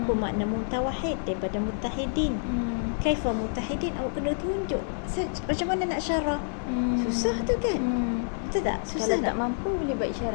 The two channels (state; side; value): silent; right; digital silence